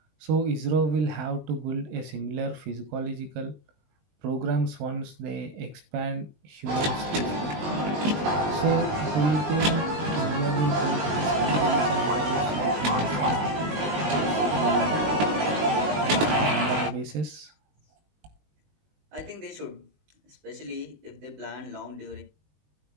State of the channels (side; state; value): left; late; 20 ms